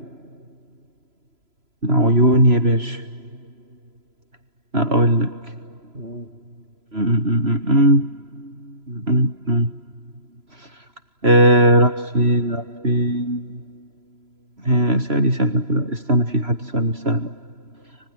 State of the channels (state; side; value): late; left; 3.0 ms